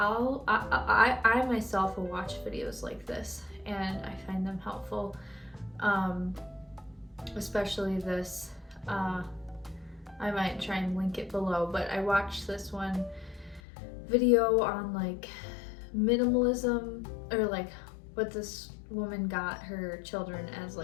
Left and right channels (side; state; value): right; drops out; at 13.6 s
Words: myself will watch videos like this and I find them helpful, especially this. I might try and link it below, but I watched this one video on like minimalism, or like what this woman got her children as